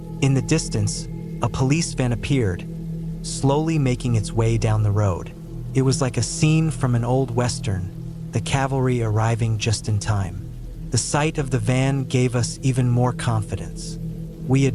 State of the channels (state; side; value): identical; both; correlation 1.00